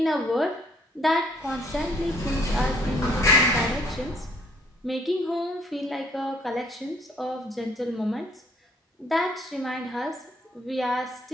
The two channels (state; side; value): normal; both; correlation 0.63